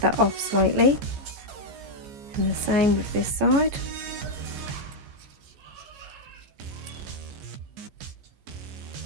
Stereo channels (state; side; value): late; left; 15 ms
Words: that off slightly, and the same with this side.